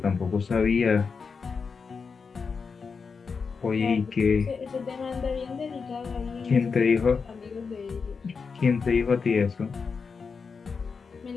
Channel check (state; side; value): quieter; right; 5.3 dB